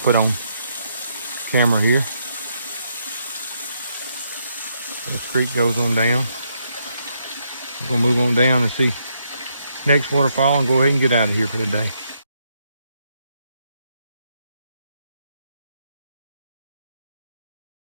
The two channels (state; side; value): inverted; both; correlation -0.76